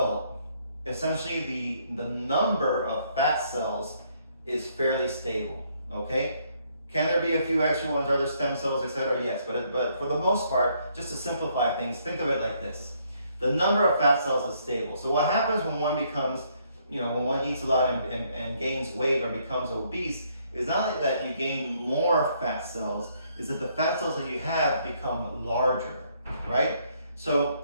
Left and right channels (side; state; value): both; inverted; correlation -0.70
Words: essentially the number of fat cells is fairly stable. Okay, can there be a few extra ones, other stem cells, etc.? Yes, but for the most part, just to simplify things, think of it like this: the number of fat cells is stable. So what happens when one becomes, when one eats a lot and gains weight or becomes obese, is not that you gain more fat cells, is that the fat cells that you have become larger, right? So